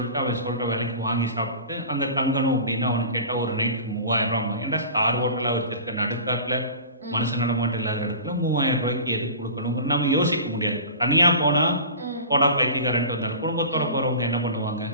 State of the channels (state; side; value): inverted; both; correlation -0.37